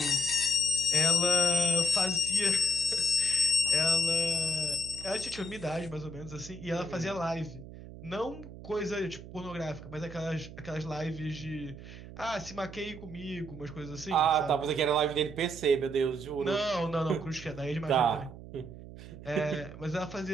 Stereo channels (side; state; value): right; noise; hum, 14 dB below the sound